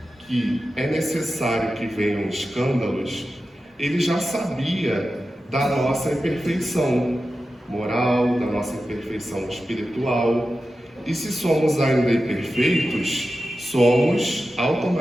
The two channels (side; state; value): both; normal; correlation 0.92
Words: que é necessário que venham escândalos, ele já sabia da nossa imperfeição moral, da nossa imperfeição espiritual. E se somos ainda imperfeitos, somos